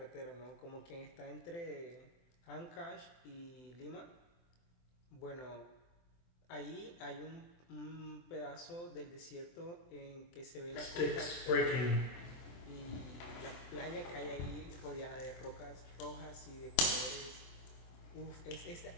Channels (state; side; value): late; right; 24 ms